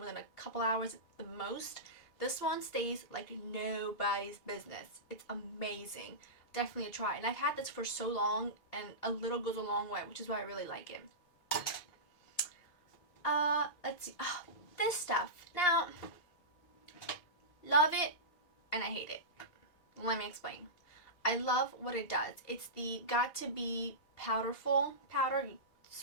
than a couple hours at the most. This one stays like nobody's business. It's amazing. Definitely a try. And I've had this for so long, and a little goes a long way, which is why I really like it. Let's see. Oh, this stuff. Now, love it and I hate it. Let me explain. I love what it does. It's the Got To Be powderful powder. You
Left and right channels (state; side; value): late; right; 2.8 ms